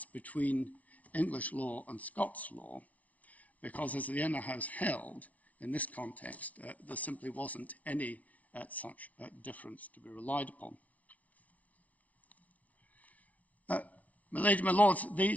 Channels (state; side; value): late; right; 0.069 ms